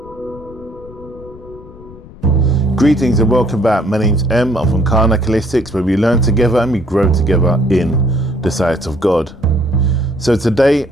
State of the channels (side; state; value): left; noise; rumble, 19 dB below the sound